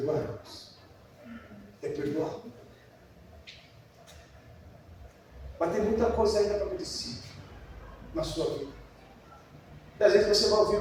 É perdoar. Mas tem muita coisa ainda para acontecer na sua vida. E às vezes você vai ouvir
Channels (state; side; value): identical; both; correlation 1.00